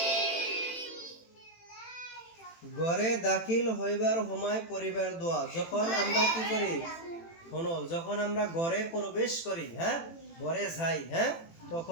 ঘরে দাখিল হইবার সময় পরিবার দোয়া যখন আমরা কি করি শোনো যখন আমরা ঘরে প্রবেশ করি ঘরে যাই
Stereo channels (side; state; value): right; late; 18 ms